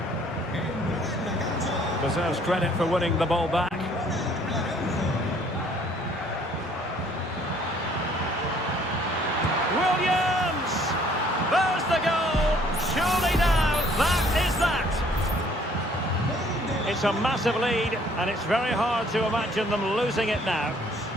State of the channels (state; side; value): normal; both; correlation 0.60